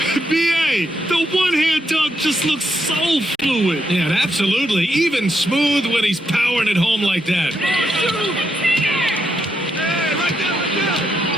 B.A., the one-hand dunk just looks so fluid. Yeah, absolutely. Even smooth when he's powering it home like that.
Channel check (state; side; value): normal; both; correlation 0.80